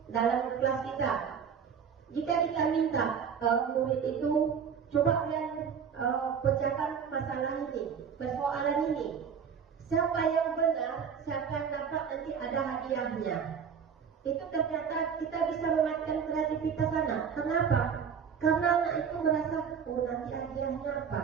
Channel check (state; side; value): quieter; left; 7.0 dB